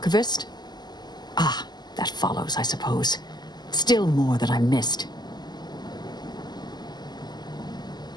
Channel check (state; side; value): late; right; 0.21 ms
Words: Ah, that follows, I suppose. Still more that I missed.